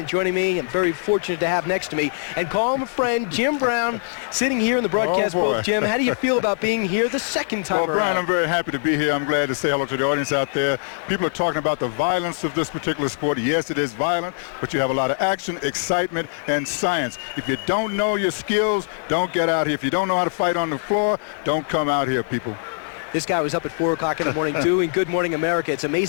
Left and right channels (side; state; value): right; silent; digital silence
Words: joining me, I'm very fortunate to have next to me, and call him a friend, Jim Brown, sitting here in the broadcast booth. Jim, how do you feel about being here the second time around? Well, Brian, I'm very happy to be here. I'm glad to say hello to the audience out there. People are talking about the violence of this particular sport. Yes, it is violent, but you have a lot of action, excitement, and science. If you don't know your skills, don't get out here. If you don't know how to fight on the floor, don't come out here, people. This guy was up at 4 o'clock in the morning doing Good Morning America. It's